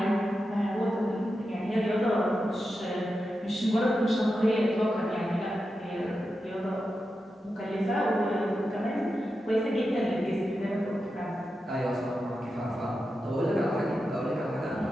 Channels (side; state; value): both; normal; correlation 0.90